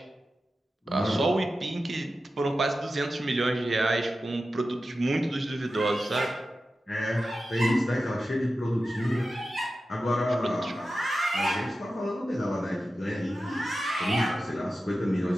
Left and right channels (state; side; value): normal; both; correlation 0.92